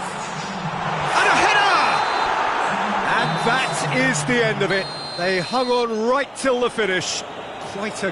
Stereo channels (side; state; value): both; identical; correlation 1.00